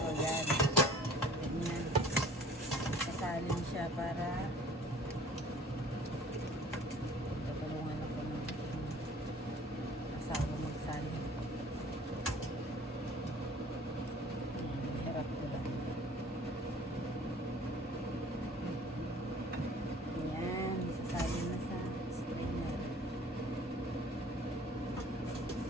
yan. Ganyan. Sasalin siya para tutulungan ako ng asawa magsalin. Harap ko lang. Yan, isasalin na sa strainer.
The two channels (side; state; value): both; normal; correlation 0.50